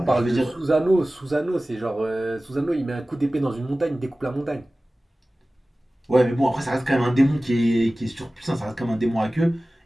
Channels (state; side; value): normal; both; correlation 0.97